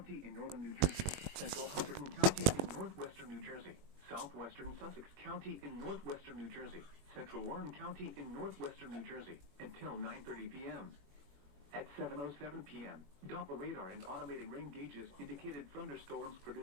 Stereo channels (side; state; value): left; late; 21 ms